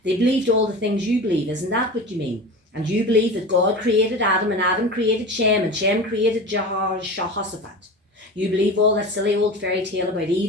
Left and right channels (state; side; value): normal; both; correlation 0.31